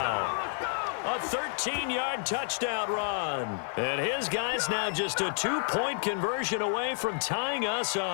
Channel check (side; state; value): right; silent; 58 dB below the other